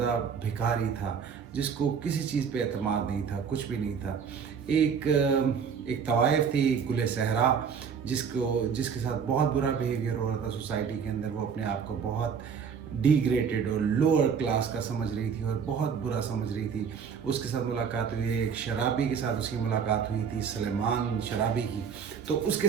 भिखारी था, जिसको किसी चीज़ पे एतमाद नहीं था, कुछ भी नहीं था। एक तवाइफ थी, गुले सहरा, जिसके साथ बहुत बुरा बिहेवियर हो रहा था सोसाइटी के अंदर। वो अपने आप को बहुत डिग्रेडेड और लोअर क्लास का समझ रही थी और बहुत बुरा समझ रही थी। उसके साथ मुलाकात हुई, एक शराबी के साथ उसकी मुलाकात हुई थी, सलेमान शराबी की। तो उसके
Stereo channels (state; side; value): quieter; left; 6.7 dB